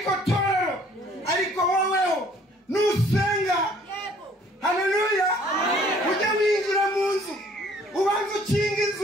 torero, ariko woweho nusenga. Haleluya. Ujye winjira mu nzu ubanza ukinga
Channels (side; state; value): both; normal; correlation 0.58